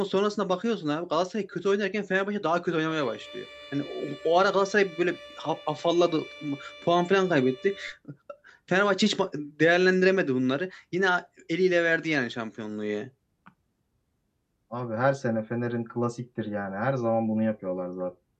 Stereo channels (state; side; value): identical; both; correlation 1.00